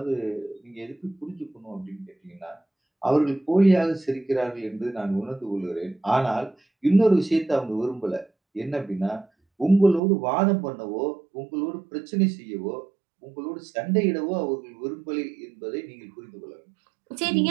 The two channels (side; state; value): left; drops out; at 10.0 s